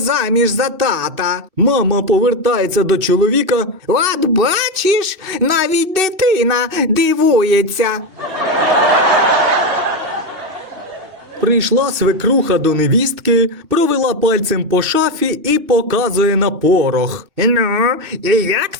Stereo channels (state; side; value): late; left; 2.6 ms